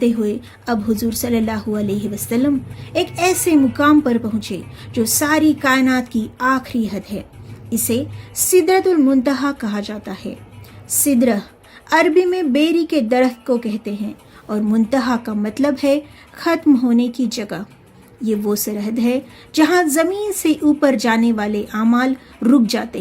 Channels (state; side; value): identical; both; correlation 1.00